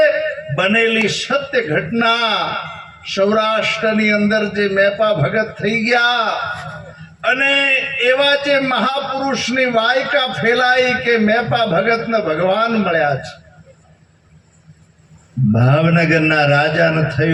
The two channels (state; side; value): identical; both; correlation 1.00